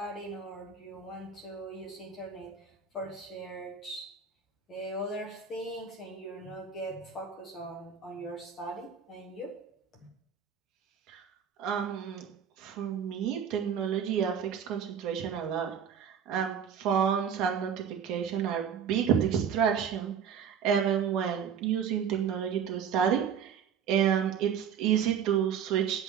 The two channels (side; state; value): left; quieter; 7.7 dB